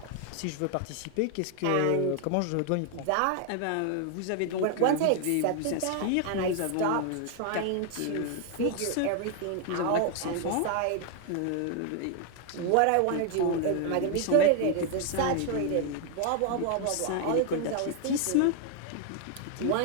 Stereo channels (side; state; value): both; different; correlation 0.00